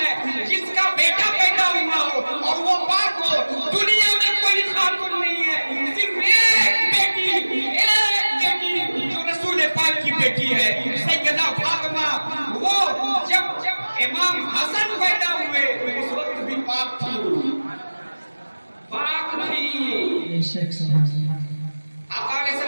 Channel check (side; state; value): both; inverted; correlation -1.00